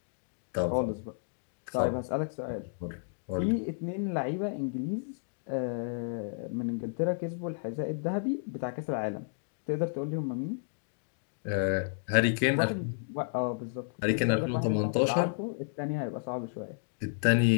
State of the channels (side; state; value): right; silent; digital silence